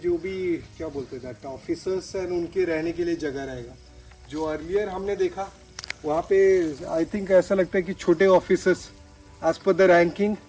भी क्या बोलते हैं ऑफिसर्स एंड उनके रहने के लिए जगह रहेगा। जो अर्लियर हमने देखा वहाँ पे आई थिंक ऐसा लगता है कि छोटे officers as per the ranking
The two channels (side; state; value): both; identical; correlation 1.00